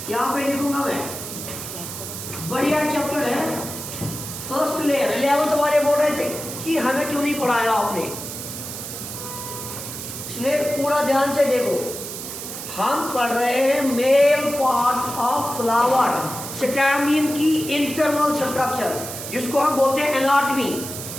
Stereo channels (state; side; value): noise; right; hiss, 8 dB below the sound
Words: यहाँ पे लिखूंगा मैं, बढ़िया चैप्टर है फर्स्ट लेयर. 11th वाले बोल रहे थे कि हमें क्यों नहीं पढ़ाया आपने. इसलिए पूरा ध्यान से देखो, हम पढ़ रहे हैं male part of flower, stamen की इंटरनल स्ट्रक्चर, जिसको हम बोलते हैं एनाटमी,